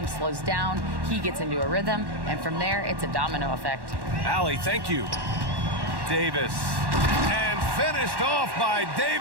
slows down, he gets into a rhythm, and from there, it's a domino effect. Allie, thank you. Davis. And finished off by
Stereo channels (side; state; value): left; late; 1.1 ms